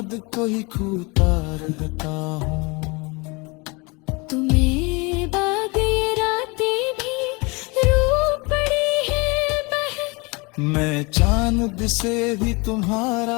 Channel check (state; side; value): quieter; right; 27.9 dB